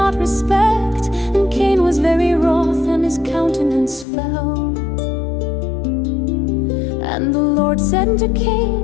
respect. And Cain was very wroth, and his countenance fell. And the Lord said unto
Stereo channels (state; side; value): drops out; right; at 4.0 s